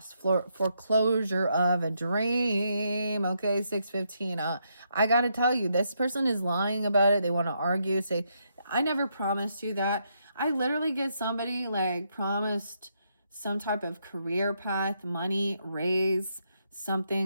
Foreclosure of a dream. Okay, 615. I got to tell you, this person is lying about it. They want to argue, say, I never promised you that. I literally get somebody like promised some type of career path, money, raise,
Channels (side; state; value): both; inverted; correlation -0.78